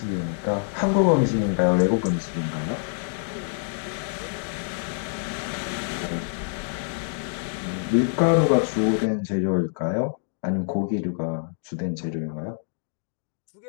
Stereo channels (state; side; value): silent; right; digital silence